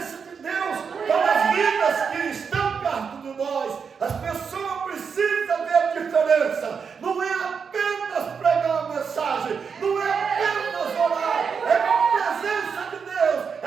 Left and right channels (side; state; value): left; quieter; 6.1 dB